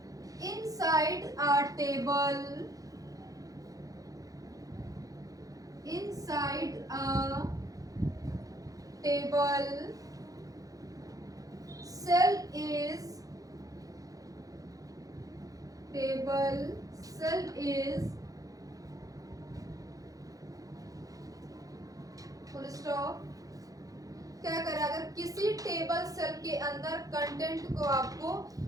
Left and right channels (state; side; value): late; left; 0.17 ms